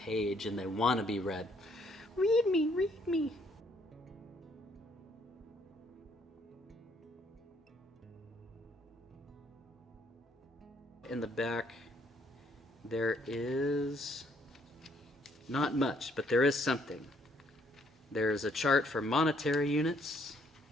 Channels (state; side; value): normal; both; correlation 0.68